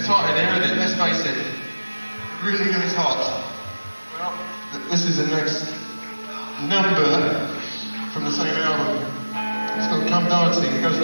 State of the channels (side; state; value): both; inverted; correlation -1.00